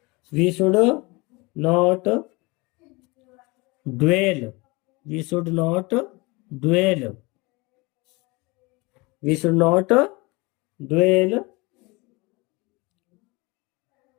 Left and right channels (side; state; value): right; quieter; 25.4 dB